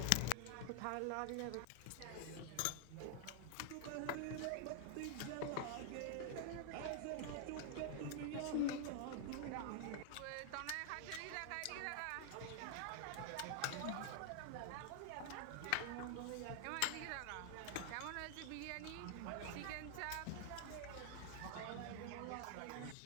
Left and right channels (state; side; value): different; both; correlation 0.00